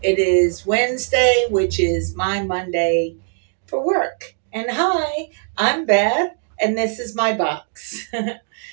It is Wednesday, which is my Monday for work. And hi, I'm Beth, and this is my box.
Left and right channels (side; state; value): left; silent; 64 dB below the other